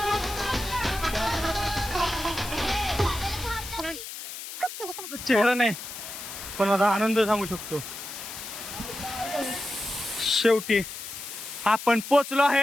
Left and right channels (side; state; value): left; noise; hiss, 10 dB below the sound